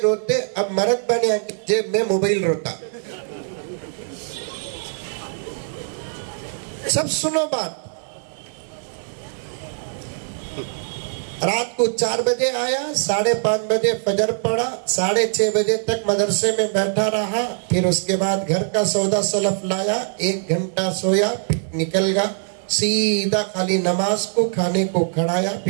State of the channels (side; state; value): left; silent; digital silence